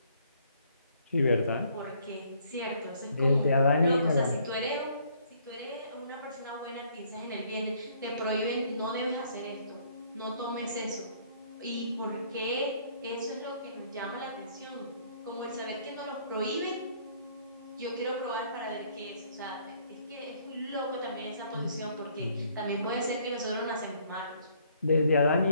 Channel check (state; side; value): inverted; both; correlation -0.64